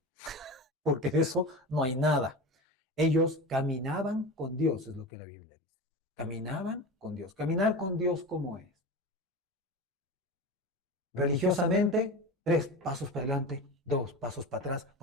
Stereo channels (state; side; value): normal; both; correlation 0.28